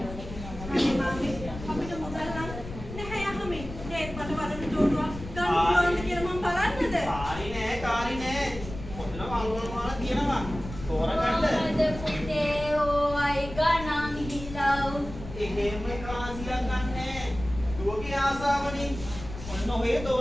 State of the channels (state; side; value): noise; left; rumble, 11 dB below the sound